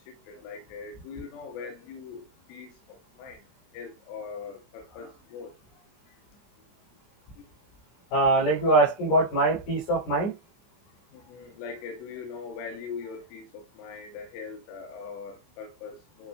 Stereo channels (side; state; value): right; late; 24 ms